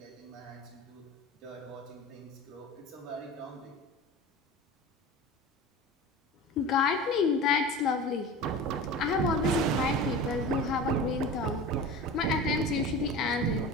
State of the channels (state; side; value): normal; both; correlation 0.33